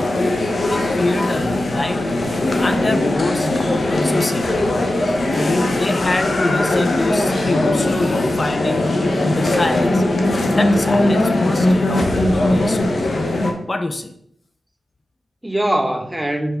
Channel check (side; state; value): both; normal; correlation 0.93